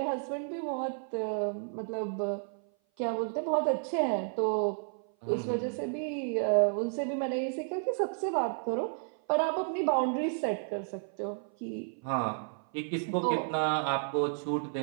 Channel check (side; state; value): left; silent; 55 dB below the other